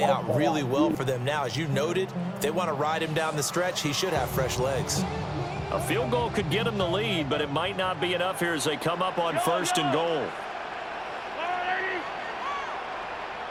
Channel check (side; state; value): both; identical; correlation 1.00